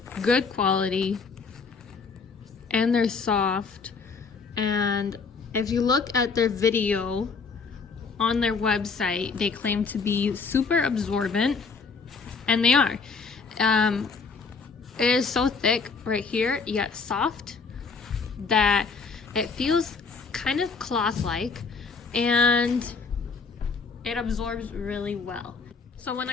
good quality and they're soft. And if you look at their video on their website, they claim to be super absorbent, and they are. It is so thick right here, yet soft, that it feels kind of cloth-like, and it absorbs really well. So when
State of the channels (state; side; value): quieter; right; 4.9 dB